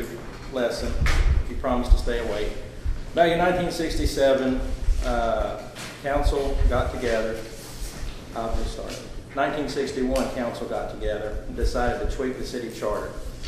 lesson, if you promise to stay awake. Back in 1967, council got together. I'll just start. 1961, council got together and decided to tweak the city charter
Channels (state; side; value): identical; both; correlation 1.00